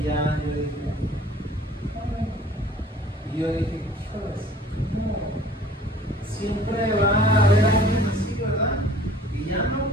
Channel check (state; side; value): normal; both; correlation 0.50